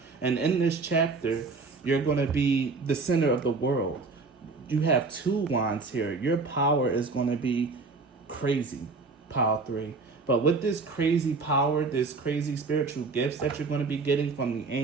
And in this chapter, you're going to be the center of the world. You have 2 wands here. Your power is going to be crazy, pile 3. But with this crazy power, this crazy spiritual gifts that you're going to be getting from the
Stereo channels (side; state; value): left; quieter; 4.1 dB